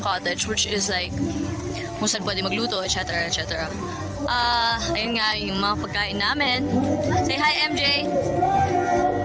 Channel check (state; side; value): identical; both; correlation 1.00